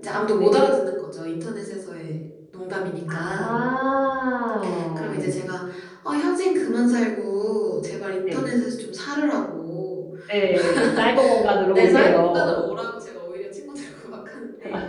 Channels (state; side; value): identical; both; correlation 1.00